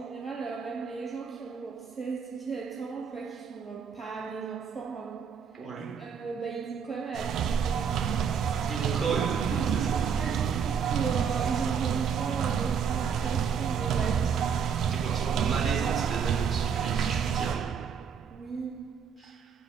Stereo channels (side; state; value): left; quieter; 6.9 dB